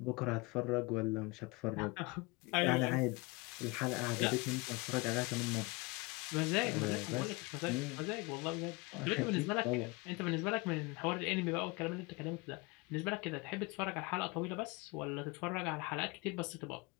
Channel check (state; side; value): quieter; right; 25.7 dB